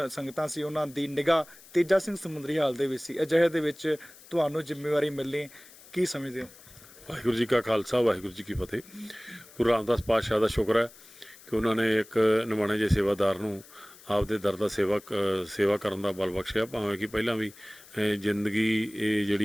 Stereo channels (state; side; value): noise; left; hiss, 22 dB below the sound